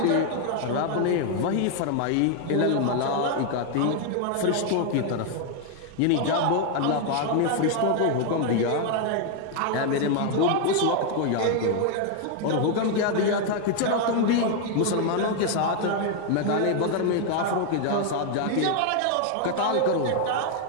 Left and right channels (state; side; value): different; both; correlation 0.00